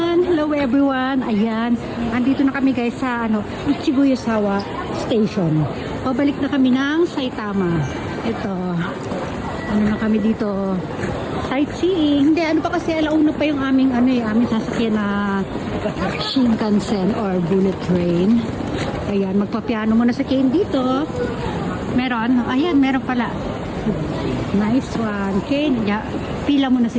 Hello everyone! Ayan, andito na kami guys sa Ichiguyosawa Station. Pabalik na kami ng Saitama. Ito, na kami dito. Sightseeing. Hindi, pa kasi alauna pa yung aming sasakyan na Shinkansen or bullet train. Ayan, magpapiano muna sa Kane dito. Meron? Ayan, meron pala. Nice one. Kane, pila muna si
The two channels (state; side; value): identical; both; correlation 1.00